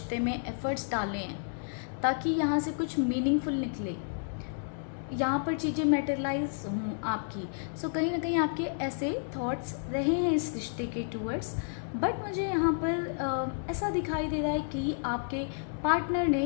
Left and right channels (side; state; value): right; silent; digital silence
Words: में एफ़र्ट्स डाले हैं ताकि यहाँ से कुछ मीनिंगफुल निकले, यहाँ पर चीज़ें मैटेरियलाइज हों आपकी। सो कहीं ना कहीं आपके ऐसे थॉट्स रहे हैं इस रिश्ते के टूवर्ड्स। बट मुझे यहाँ पर ऐसा दिखाई दे रहा है कि आपके पार्टनर